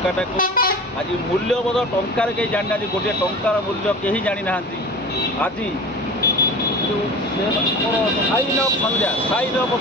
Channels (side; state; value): both; normal; correlation 0.36